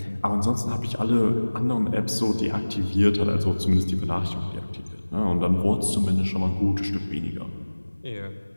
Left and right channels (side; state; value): both; inverted; correlation -1.00